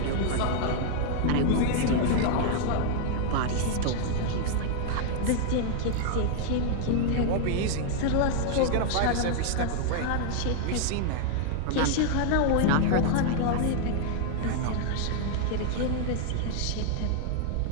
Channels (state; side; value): different; both; correlation 0.00